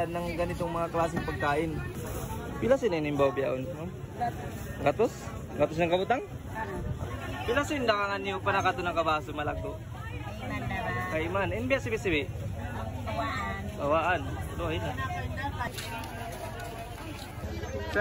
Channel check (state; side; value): identical; both; correlation 1.00